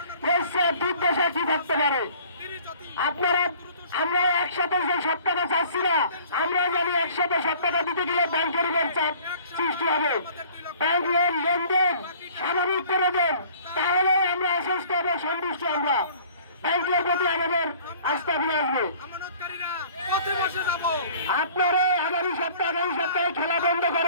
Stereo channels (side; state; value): both; inverted; correlation -0.51